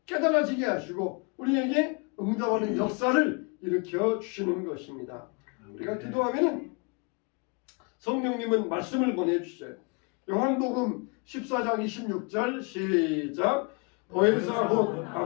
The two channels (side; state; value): right; quieter; 31.6 dB